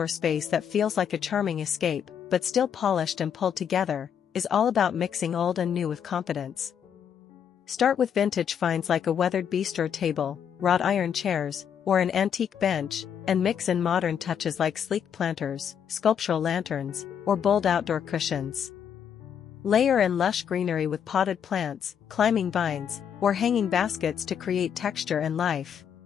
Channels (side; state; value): right; quieter; 8.2 dB